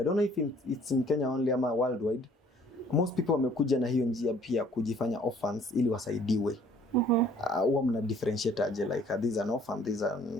don't know if it's in Kenya only ama worldwide, most people wamekuja na hiyo njia pia kujifanya orphans ili wasaidiwe. Huwa mna differentiate aje, like this is an orphan, this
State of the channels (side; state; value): both; normal; correlation 0.58